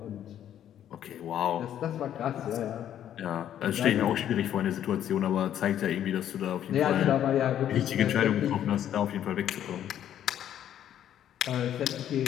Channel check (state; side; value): quieter; right; 10.6 dB